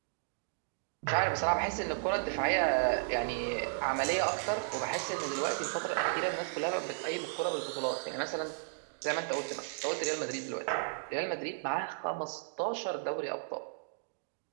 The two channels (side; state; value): left; silent; digital silence